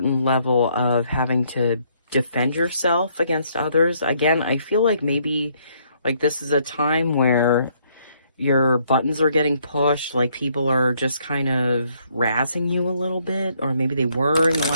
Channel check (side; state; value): both; inverted; correlation -0.69